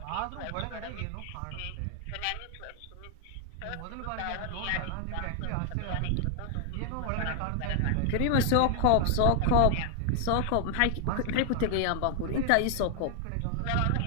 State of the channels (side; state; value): both; different; correlation 0.00